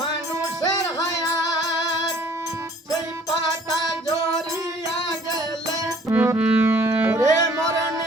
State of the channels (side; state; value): both; normal; correlation 0.56